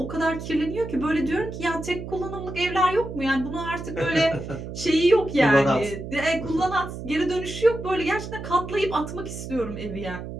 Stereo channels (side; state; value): right; noise; hum, 9 dB below the sound